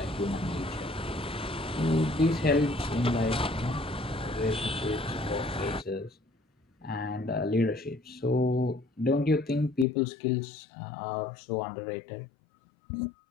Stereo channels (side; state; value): right; drops out; at 9.9 s